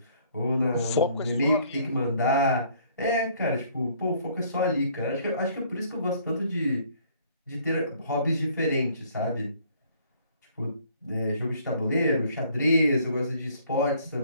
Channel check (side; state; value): both; inverted; correlation -0.60